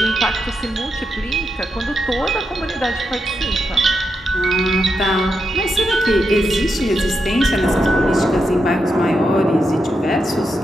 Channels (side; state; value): both; normal; correlation 0.85